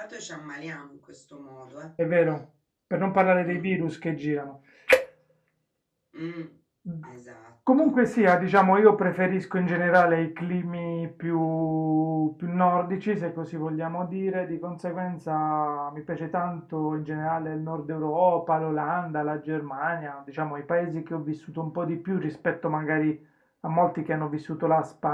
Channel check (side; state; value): both; identical; correlation 1.00